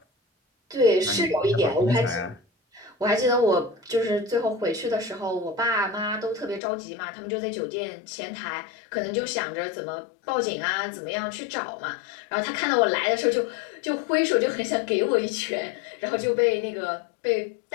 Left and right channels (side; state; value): right; drops out; at 6.6 s